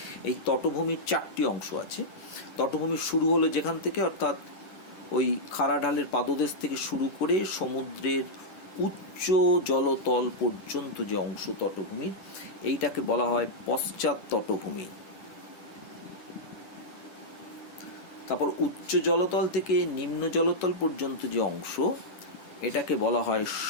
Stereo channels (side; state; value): right; late; 10 ms